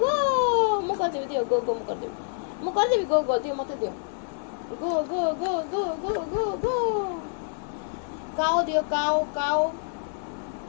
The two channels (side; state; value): right; silent; digital silence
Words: go. ମୁଁ କରିଦେବି ଦିଅ go go ମୁଁ କରିଦେବି go go ଦିଅ ମତେ ଦିଅ go go go go go go go. cow ଦିଅ cow cow.